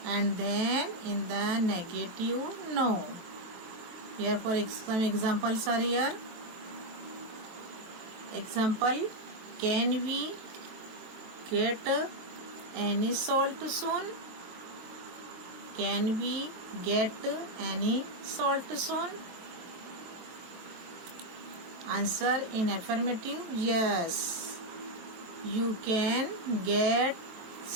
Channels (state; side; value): late; left; 23 ms